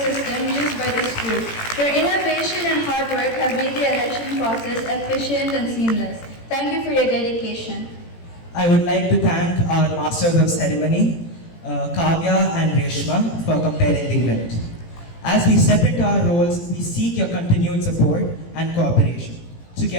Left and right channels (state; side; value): late; right; 18 ms